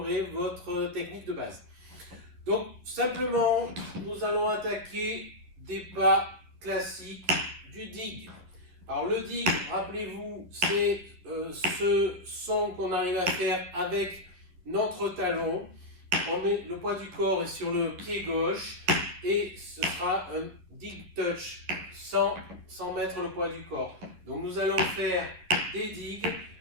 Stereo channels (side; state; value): left; late; 11 ms